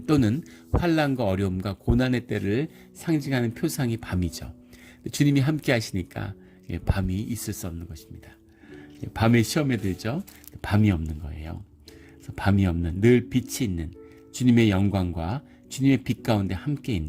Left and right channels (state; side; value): identical; both; correlation 1.00